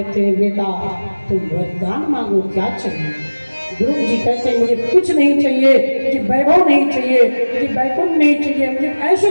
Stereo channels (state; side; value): inverted; both; correlation -1.00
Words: हैं बेटा तुम वरदान मांगो, क्या चाहिए? ध्रुव जी कहते हैं मुझे कुछ नहीं चाहिए, मुझे वैभव नहीं चाहिए, मुझे वैकुंठ नहीं चाहिए, मुझे ऐसी